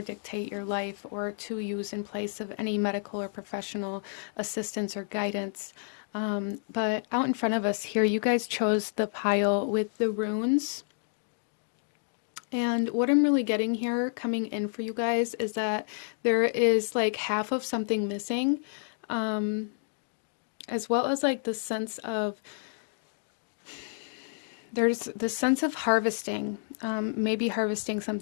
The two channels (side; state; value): right; silent; digital silence